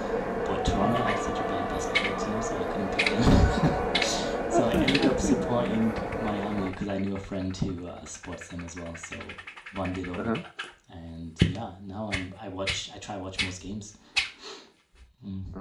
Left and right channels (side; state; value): both; identical; correlation 1.00